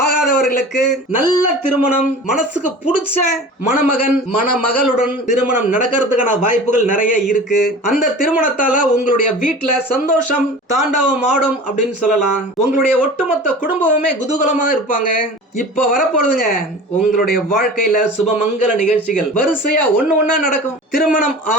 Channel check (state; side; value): normal; both; correlation 0.38